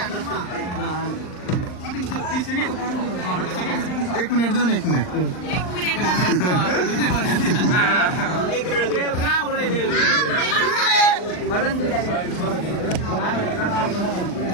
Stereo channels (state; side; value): late; right; 39 ms